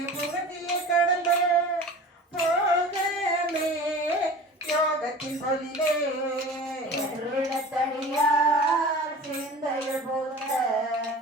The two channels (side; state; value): both; normal; correlation 0.38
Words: புகழ்ச்சியை கடந்த போகமே யோகத்தின் பொலிவே எருளத்தடியா